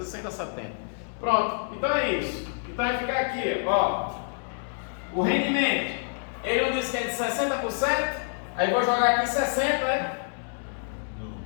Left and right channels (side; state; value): right; silent; digital silence